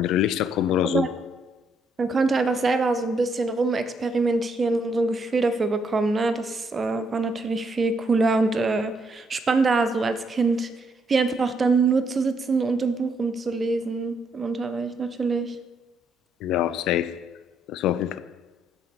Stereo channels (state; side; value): normal; both; correlation 0.73